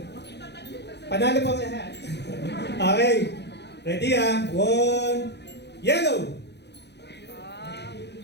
Panalo po ang lahat. Okay. Ready ah. One. Yellow!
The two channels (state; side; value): late; right; 0.50 ms